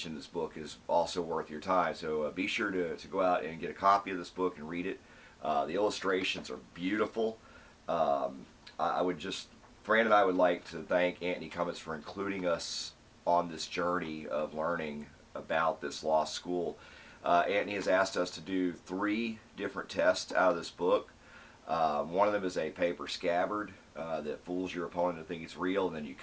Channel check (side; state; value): both; identical; correlation 1.00